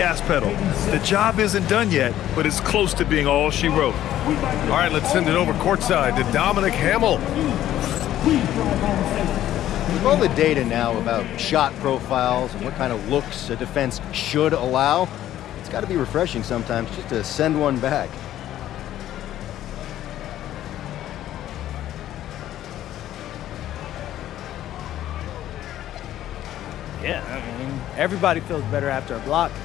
pedal. The job isn't done yet, but it's close to being all she wrote. All right, let's send it over courtside to Dominic Hamill. With all the data now about shot profiles and what kind of looks a defense should allow, it's got to be refreshing sometimes just to send one back. Yeah, I mean, everybody feels better after a block.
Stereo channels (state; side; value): quieter; right; 12.6 dB